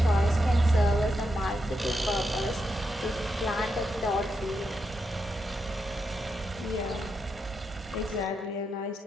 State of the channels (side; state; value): both; normal; correlation 0.84